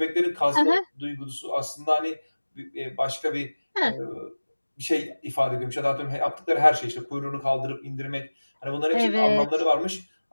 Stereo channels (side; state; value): both; inverted; correlation -1.00